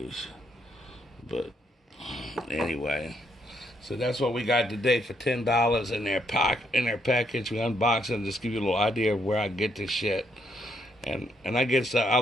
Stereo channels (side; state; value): both; normal; correlation 0.74